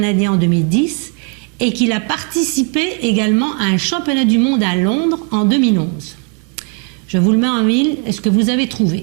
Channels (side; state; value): left; quieter; 36.2 dB